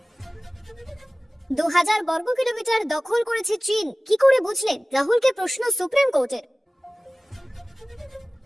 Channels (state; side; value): normal; both; correlation 0.97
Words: 2000 বর্গ কিলোমিটার দখল করেছে চীন, কি করে বুঝলেন? রাহুলকে প্রশ্ন সুপ্রিম কোর্টের।